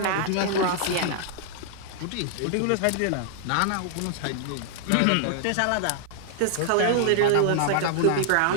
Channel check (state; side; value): different; both; correlation 0.00